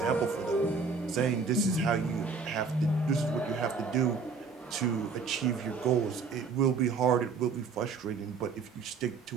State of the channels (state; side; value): quieter; left; 5.0 dB